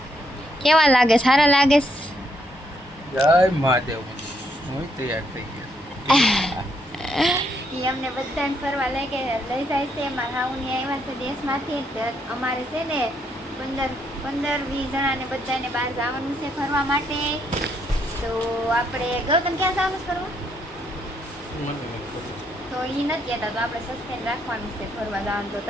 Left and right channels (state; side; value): normal; both; correlation 0.74